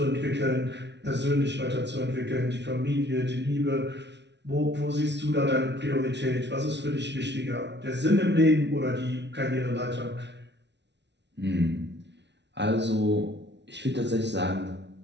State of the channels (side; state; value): left; late; 0.50 ms